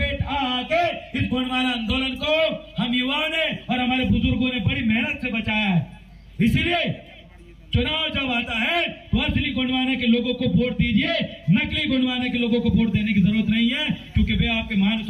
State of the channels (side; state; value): both; identical; correlation 1.00